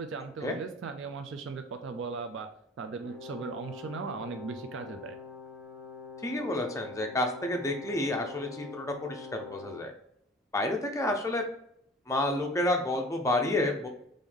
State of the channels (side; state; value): both; normal; correlation 0.44